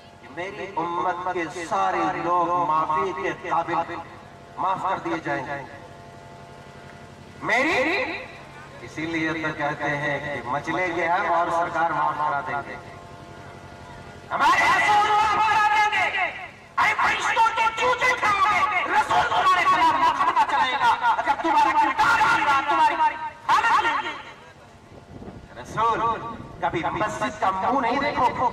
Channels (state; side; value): identical; both; correlation 1.00